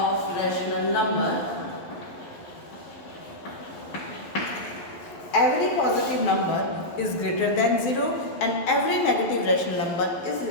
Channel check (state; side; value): late; right; 11 ms